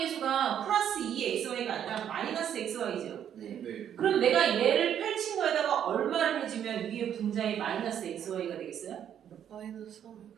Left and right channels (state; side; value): quieter; left; 9.5 dB